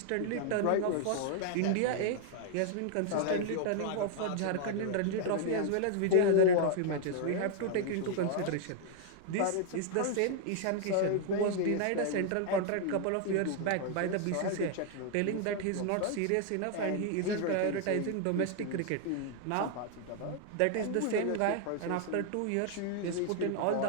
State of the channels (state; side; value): different; both; correlation 0.00